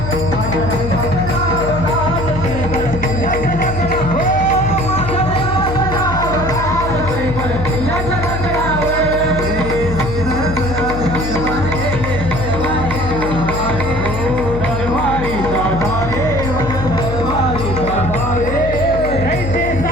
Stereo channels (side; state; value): left; noise; hum, 5 dB below the sound